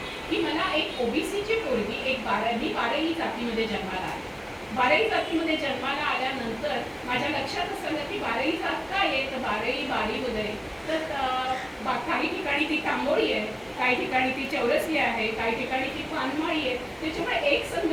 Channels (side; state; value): both; identical; correlation 1.00